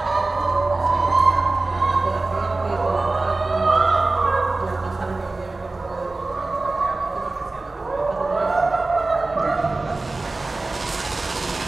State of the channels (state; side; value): quieter; left; 3.3 dB